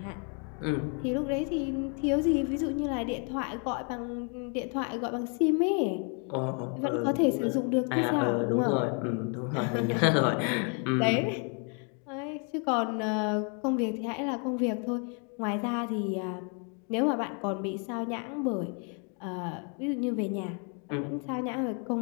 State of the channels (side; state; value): right; quieter; 39.1 dB